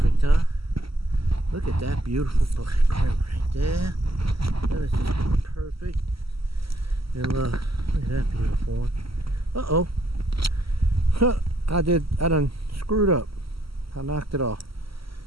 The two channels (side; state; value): left; late; 0.75 ms